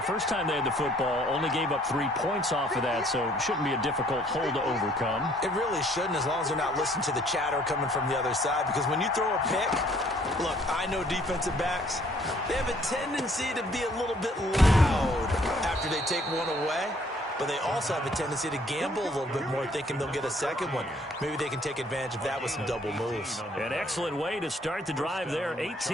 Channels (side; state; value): both; normal; correlation 0.61